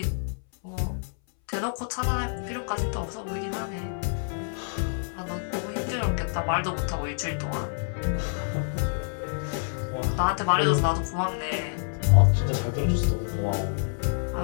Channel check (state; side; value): silent; right; 59 dB below the other